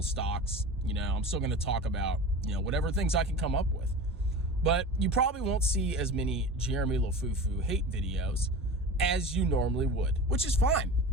stocks. You know, I'm still going to talk about, you know, whatever things I can come up with. But you probably won't see as many Jeremy Lafufu hate videos as you normally would, which is fine.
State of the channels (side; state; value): both; normal; correlation 0.33